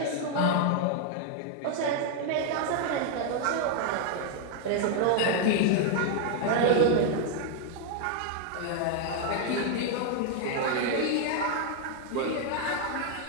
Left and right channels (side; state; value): both; different; correlation 0.00